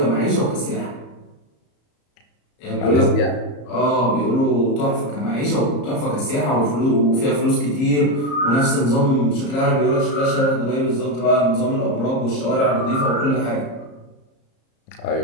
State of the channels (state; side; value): late; right; 34 ms